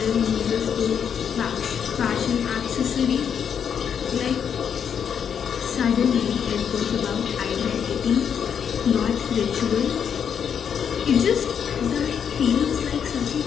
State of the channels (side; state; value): right; quieter; 7.7 dB